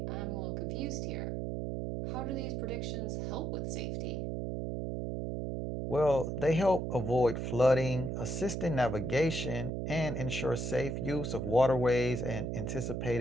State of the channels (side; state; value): right; noise; hum, 2 dB below the sound